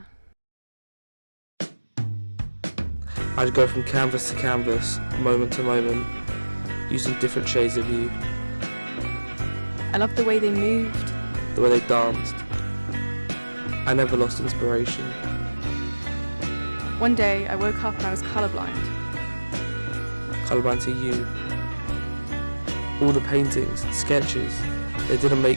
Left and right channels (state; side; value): inverted; both; correlation -1.00